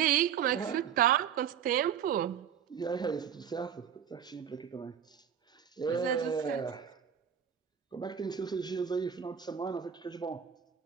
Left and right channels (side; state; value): left; quieter; 8.5 dB